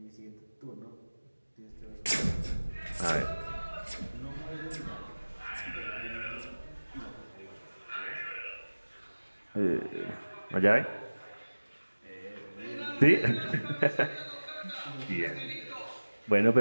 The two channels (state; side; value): inverted; both; correlation -1.00